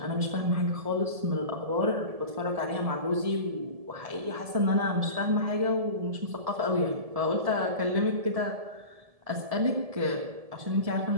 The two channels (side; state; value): left; late; 1.7 ms